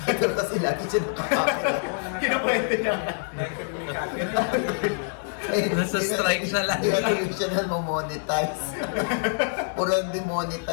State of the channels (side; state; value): right; silent; 61 dB below the other